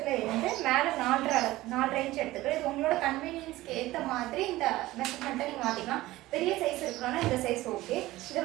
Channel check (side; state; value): left; quieter; 17.4 dB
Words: இருந்து மேலே 4.5 இன்ச் எடுத்துக்கிறோம். இது உங்களோட கன்வீனியன்ஸ்க்கு ஏற்ற மாதிரி இந்த மெஷர்மெண்ட்டை நீங்கள் மாற்றிக்கலாம். பெரிய சைஸ் இருக்கணும்னா இந்த சைஸ் ஓகே. இதை